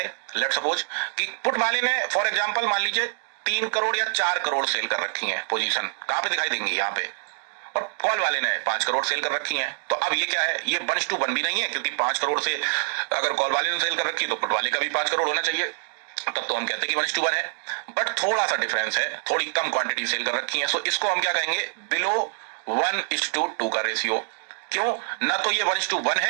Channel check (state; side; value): silent; left; digital silence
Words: लेट सपोज कि पुट वाले ने फॉर एग्जांपल मान लीजिए 3 करोड़ या 4 करोड़ सेल कर रखी है, पोजीशन कहां पे दिखाई देंगी, यहां पे, और कॉल वाले ने 5 करोड़ सेल कर रखी हैं, तो अब ये क्या है, ये 1:1 भी नहीं है, क्योंकि 5 करोड़ से अगर कॉल वाले ने सेल कर रखी तो पुट वाले का भी 5 करोड़ होना चाहिए, तब तो हम कहते हैं कि 1:1 है। बट थोड़ा सा डिफरेंस है, थोड़ी कम क्वांटिटी सेल कर रखी है, सो इसको हम क्या कहेंगे, बिलो 1:2 का रेशियो। क्यों, ना तो ये 1:1